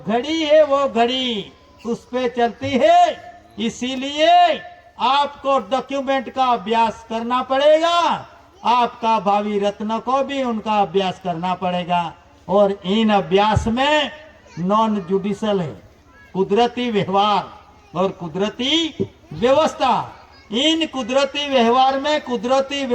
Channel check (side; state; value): both; identical; correlation 1.00